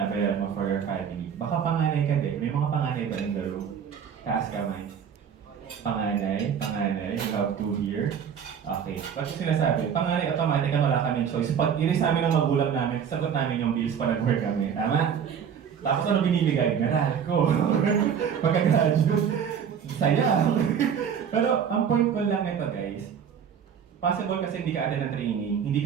mo for your family. Baka panganay ka din. May mga panganay ba in the room? Taas kamay. Panganay. You have 2 here. Okay. Ba't yung sinasabi? Panganay, automatic na wala kami choice. Pag iris namin ng magulang namin, sagot namin yung bills pa nag-work kami. Tama? Tapos ano binibigay? Meral ko. Pagka-graduate. Saya. Pero ang point ko lang ito guys, possible kasi hindi ka attend ng training, hindi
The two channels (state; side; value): quieter; left; 7.7 dB